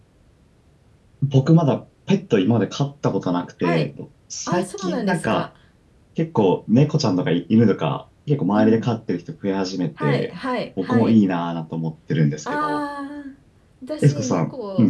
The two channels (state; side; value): identical; both; correlation 1.00